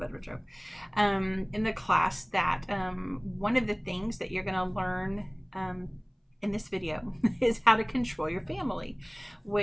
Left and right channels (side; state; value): both; identical; correlation 1.00